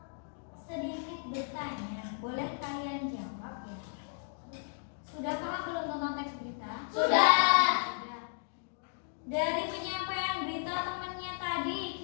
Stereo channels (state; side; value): silent; right; digital silence